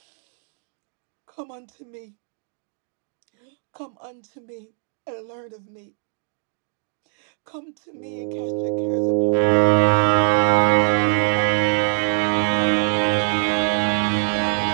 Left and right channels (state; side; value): silent; left; digital silence